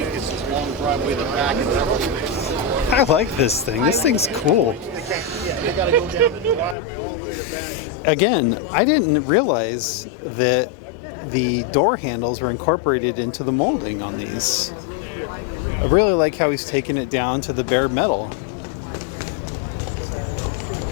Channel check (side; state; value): right; drops out; at 6.8 s